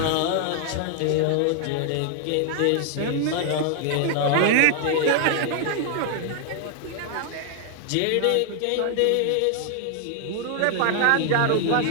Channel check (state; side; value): different; both; correlation 0.00